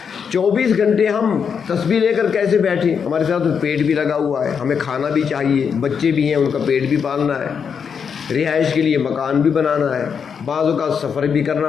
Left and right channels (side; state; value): right; quieter; 6.7 dB